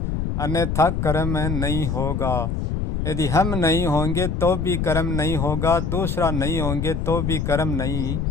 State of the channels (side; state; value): left; noise; rumble, 1 dB below the sound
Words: अन्यथा कर्म नहीं होगा। यदि हम नहीं होंगे तो भी कर्म नहीं होगा, दूसरा नहीं होंगे तो भी कर्म नहीं